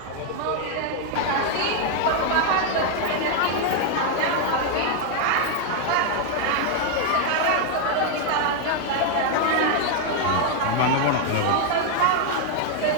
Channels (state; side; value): different; both; correlation 0.00